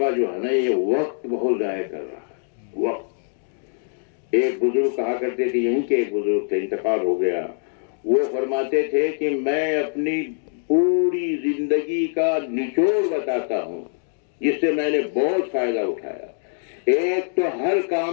جو ہے نا، یہ وقت بہت ضائع کر رہا ہے، وقت۔ ایک بزرگ کہا کرتے تھے، یہیں کے ایک بزرگ تھے، انتقال ہو گیا، وہ فرماتے تھے کہ میں اپنی پوری زندگی کا نچوڑ بتاتا ہوں جس سے میں نے بہت فائدہ اٹھایا۔ ایک تو ہر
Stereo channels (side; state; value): right; silent; digital silence